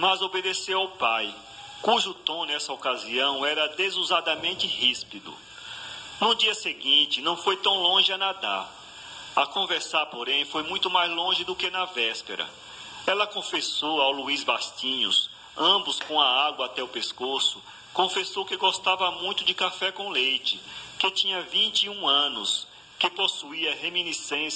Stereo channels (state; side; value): normal; both; correlation 0.97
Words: obedeceu ao pai, cujo tom nessa ocasião era desusadamente ríspido. No dia seguinte, não foi tão longe a nadar. A conversar, porém, foi muito mais longe do que na véspera. Ela confessou ao Luís Bastinhos, ambos com a água até o pescoço, confessou que gostava muito de café com leite, que tinha 21 anos, que possuía